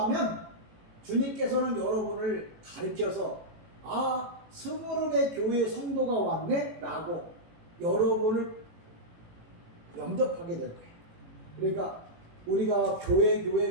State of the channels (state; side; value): late; left; 18 ms